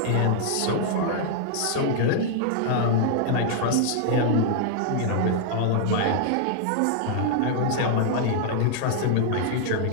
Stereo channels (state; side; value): different; both; correlation -0.01